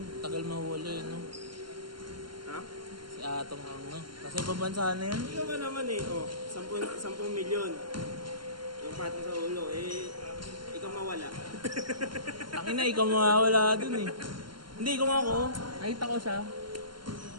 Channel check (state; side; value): late; left; 0.72 ms